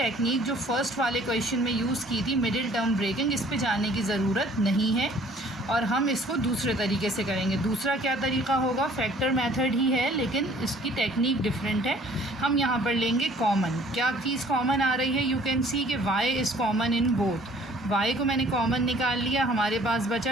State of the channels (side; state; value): both; normal; correlation 0.56